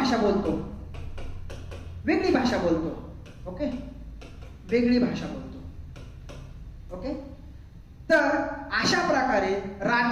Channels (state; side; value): identical; both; correlation 1.00